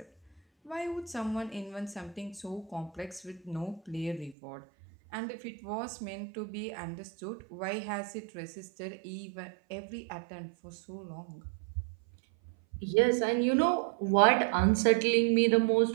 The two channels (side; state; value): left; drops out; at 4.4 s